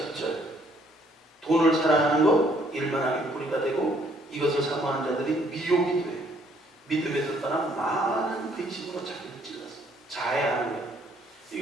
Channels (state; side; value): normal; both; correlation 0.65